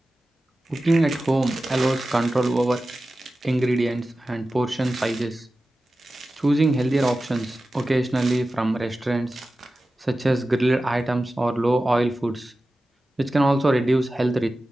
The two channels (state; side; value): normal; both; correlation 0.95